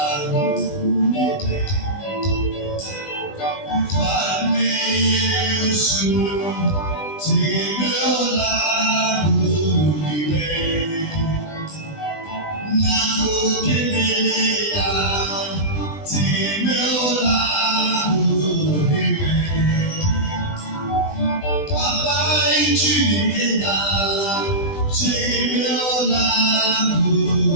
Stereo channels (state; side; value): late; right; 20 ms